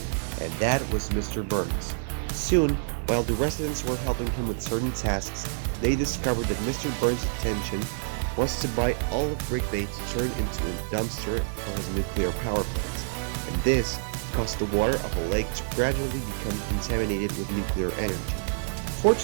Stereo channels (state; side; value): silent; left; digital silence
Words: and that was Mr. Burns. Soon, while the residents were helping him with certain tasks, they discovered that Mr. Burns' intention was to buy all of Brick Bay to turn into a dumpster for his nuclear power plant, and this caused the water of a lake to gradually become contaminated with nuclear energy.